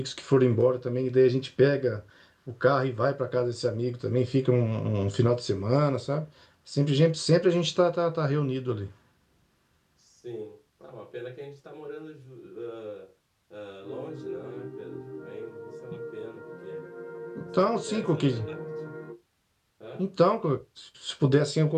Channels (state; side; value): identical; both; correlation 1.00